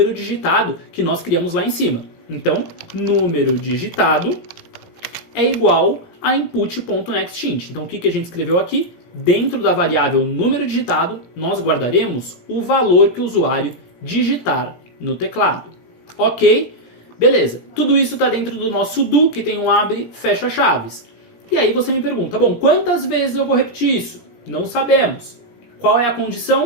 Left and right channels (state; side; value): late; right; 17 ms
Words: digitado que nós criamos lá em cima. Então, número digitado é igual a input.nextInt. Então, o que a gente escreveu aqui? Dentro da variável número digitado, nós guardaremos o valor que o usuário digitar no teclado. Ok? Beleza, tudo isso está dentro do nosso do, que tem um abre, fecha chaves. E aí você me pergunta, bom, quantas vezes eu vou repetir isso? Não sabemos. Qual é a